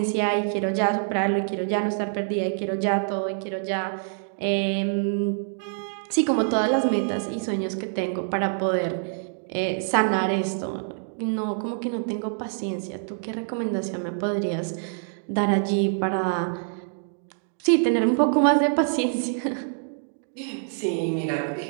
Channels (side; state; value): left; silent; digital silence